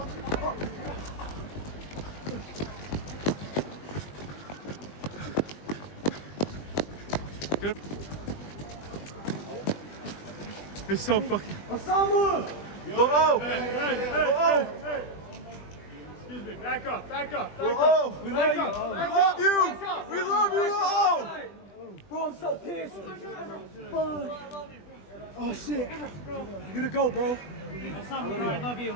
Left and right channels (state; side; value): late; right; 20 ms